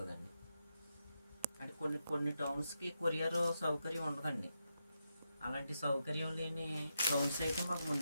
అంటే కొన్ని టౌన్స్కి కొరియర్ సౌకర్యం ఉండదండి, అలాంటి సౌకర్యం లేని గౌన్స్ అయితే మాకు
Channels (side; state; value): both; inverted; correlation -0.85